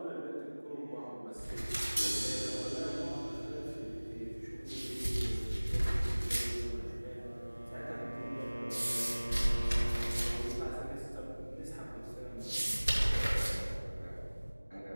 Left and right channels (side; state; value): both; inverted; correlation -1.00